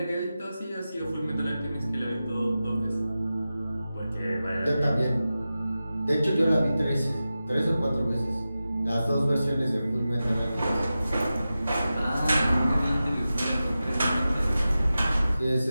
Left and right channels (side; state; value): both; inverted; correlation -0.93